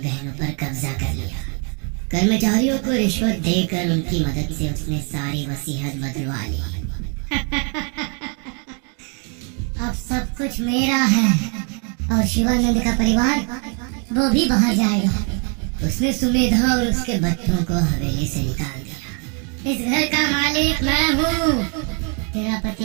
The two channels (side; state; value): left; quieter; 37.8 dB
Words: पर कब्जा कर लिया। कर्मचारियों को रिश्वत देकर उनकी मदद से उसने सारी वसीयत बदलवा ली। अब सब कुछ मेरा है और शिवानंद का परिवार वो भी बाहर जाएगा। उसने सुमेधा और उसके बच्चों को हवेली से निकाल दिया। इस घर का मालिक मैं हूँ। तेरा